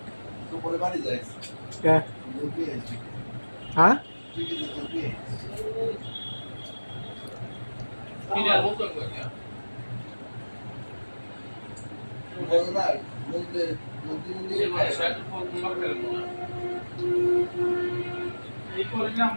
দুপুরে বাড়ি যাই হ্যাঁ দুধ নিয়ে এসেছি হ্যাঁ তুই কি দুধ নিয়ে কিনার মতো করে বল না বলতে নদী যে নিয়ে মানে শার্ট ফোন করে না এই করে নাম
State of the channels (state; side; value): inverted; both; correlation -1.00